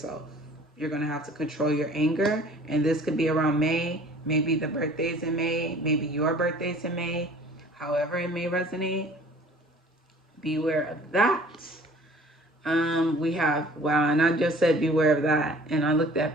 You're going to have to control your anger, and this could be around May. Maybe the birthday's in May, maybe your birthday's in May. However it may resonate, beware of that. We have, wow, and I just said beware of that. And I looked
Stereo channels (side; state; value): both; normal; correlation 0.50